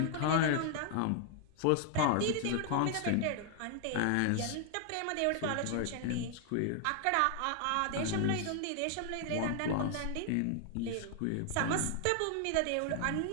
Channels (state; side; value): different; both; correlation 0.00